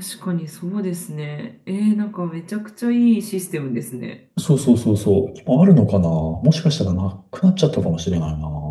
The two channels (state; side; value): identical; both; correlation 1.00